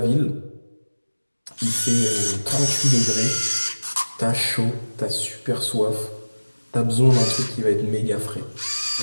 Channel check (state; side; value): inverted; both; correlation -1.00